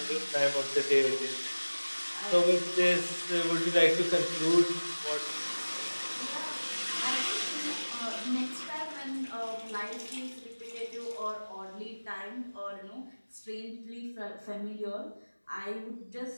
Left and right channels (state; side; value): inverted; both; correlation -1.00